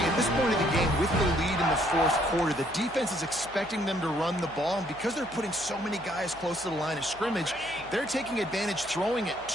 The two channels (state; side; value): noise; right; hum, 22 dB below the sound